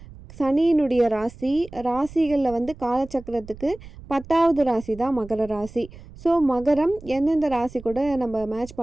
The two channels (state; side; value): noise; right; rumble, 17 dB below the sound